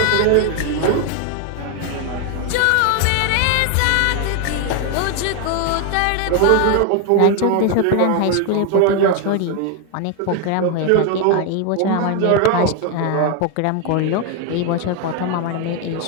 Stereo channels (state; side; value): different; both; correlation 0.01